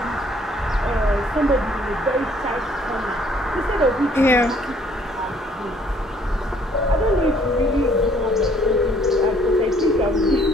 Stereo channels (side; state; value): both; normal; correlation 0.61